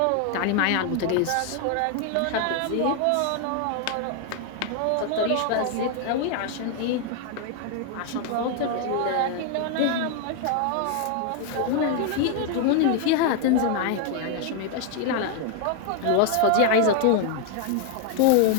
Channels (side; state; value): both; different; correlation 0.00